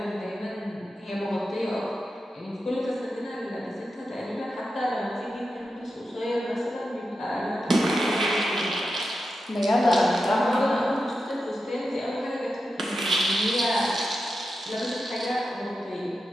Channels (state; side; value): normal; both; correlation 0.90